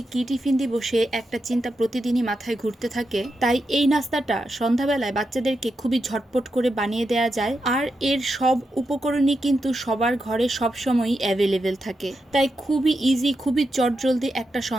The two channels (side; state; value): both; normal; correlation 0.86